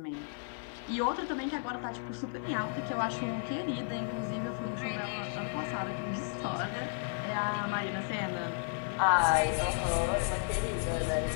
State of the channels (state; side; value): silent; right; 56 dB below the other